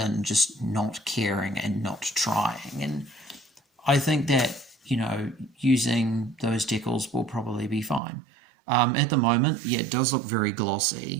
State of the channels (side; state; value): left; drops out; at 8.0 s